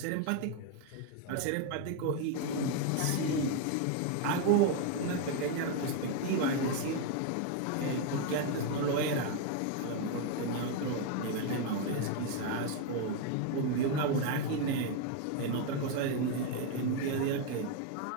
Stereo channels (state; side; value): different; both; correlation 0.01